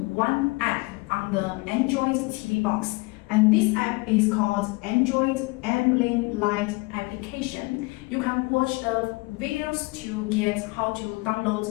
one app on the Android TV box. And this app is called Android Ambient Light application. You can watch the videos to get how to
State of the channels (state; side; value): quieter; right; 25.6 dB